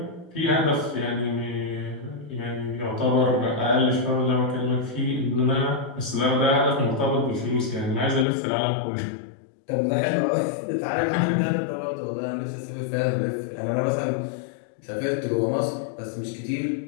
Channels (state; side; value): drops out; right; at 8.2 s